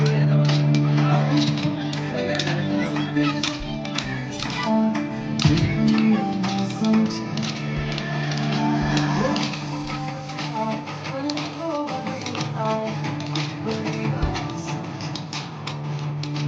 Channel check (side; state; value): both; identical; correlation 1.00